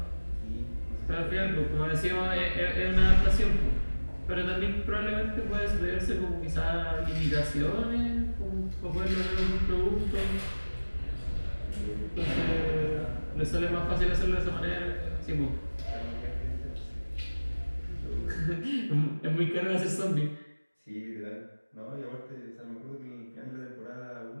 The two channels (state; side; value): inverted; both; correlation -1.00